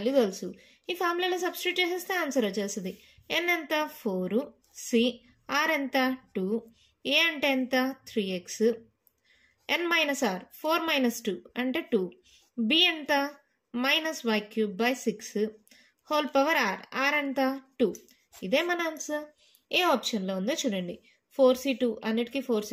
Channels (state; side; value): identical; both; correlation 1.00